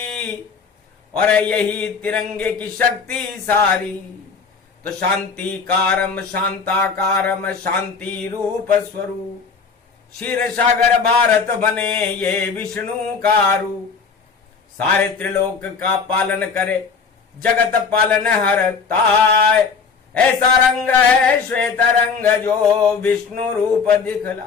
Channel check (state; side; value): quieter; right; 5.4 dB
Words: और यही तिरंगे की शक्ति सारी। तो शांति कारम शांताकारम शांति रूप स्वरूप, क्षीर सागर भारत बने ये विष्णु का रूप। सारे त्रिलोक का पालन करे, जगत पालन हरताय। ऐसा रंग है श्वेत रंग जो विष्णु रूप